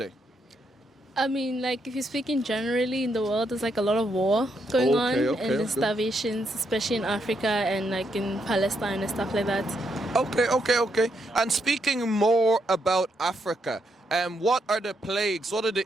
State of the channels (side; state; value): both; normal; correlation 0.78